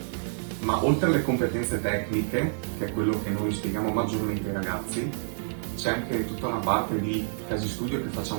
ma oltre alle competenze tecniche, che è quello che noi spieghiamo maggiormente ai ragazzi, c'è anche tutta una parte di casi studio che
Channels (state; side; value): silent; left; digital silence